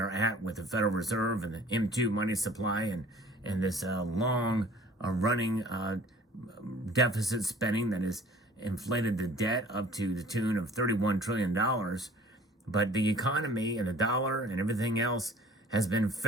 at with the Federal Reserve and the M2 money supply and this long running deficit spending that has inflated the debt up to the tune of $31 trillion. But the economy and the dollar and everything else has been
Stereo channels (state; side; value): normal; both; correlation 0.49